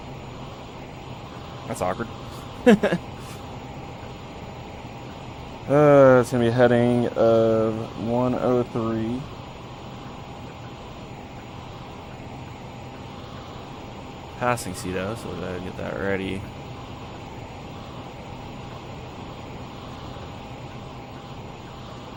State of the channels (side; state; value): both; identical; correlation 1.00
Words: That's awkward. It's going to be a heading of 103. Passing Cedo, so we gotta get that ready.